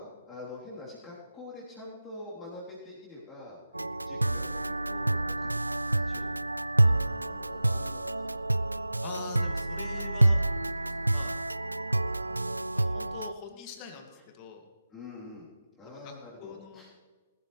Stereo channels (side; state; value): both; inverted; correlation -0.97